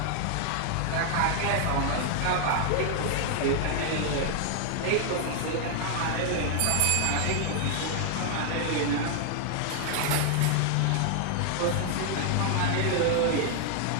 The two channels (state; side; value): different; both; correlation 0.00